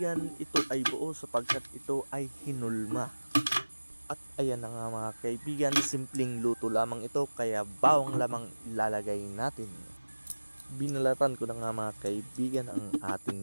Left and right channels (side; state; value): both; inverted; correlation -1.00